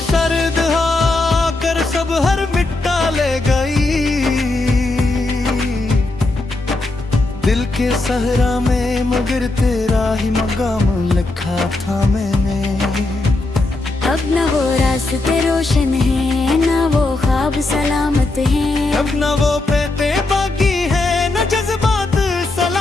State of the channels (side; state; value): right; quieter; 3.0 dB